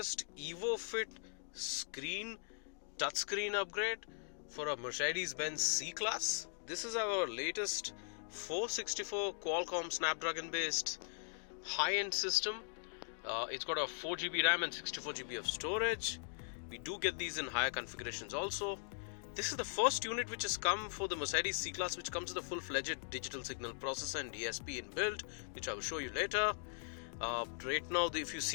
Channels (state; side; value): silent; right; digital silence